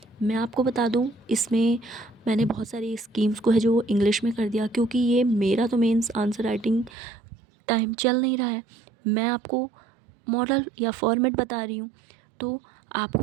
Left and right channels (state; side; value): drops out; left; at 6.9 s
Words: मैं आपको बता दूं, इसमें मैंने बहुत सारी स्कीम्स को है जो इंग्लिश में कर दिया, क्योंकि ये मेरा तो मेंस आंसर राइटिंग टाइम चल नहीं रहा है, मैं आपको मॉडल या फॉर्मेट बता रही हूँ। तो आपको